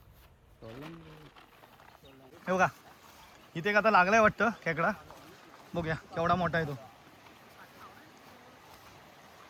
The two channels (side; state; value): both; identical; correlation 1.00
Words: हे बघा इथे एक आता लागलाय वाटतं खेकडा. बघूया केवढा मोठा आहे तो.